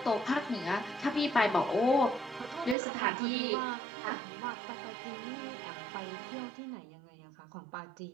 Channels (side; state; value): left; drops out; at 2.8 s